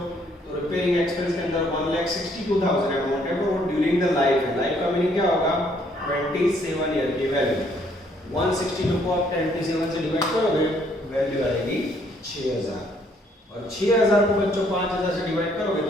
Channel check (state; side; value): normal; both; correlation 0.66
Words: तो रिपेयरिंग एक्सपेंस के अंदर 1,62,000 अमाउंट है वो ड्यूरिंग द लाइफ है। लाइफ का मीनिंग क्या होगा, 27 ईयर की वैल्यू। 162 को आप 27 से डिवाइड करोगे वैल्यू आएगी 6,000, और 6,000 को बच्चों 5,000 से डिवाइड करोगे